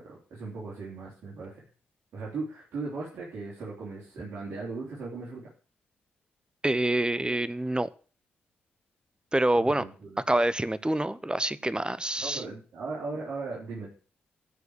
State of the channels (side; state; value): both; normal; correlation 0.90